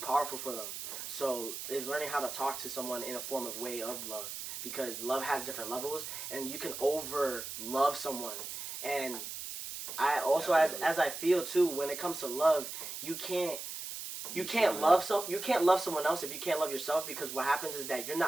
for them. So it's learning how to talk to someone in a form of way of love because love has different levels and you can over love someone. And I also as I feel too when it comes to love, you can't love someone else if you can't love yourself because what happens is that you're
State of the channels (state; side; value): noise; right; hiss, 7 dB below the sound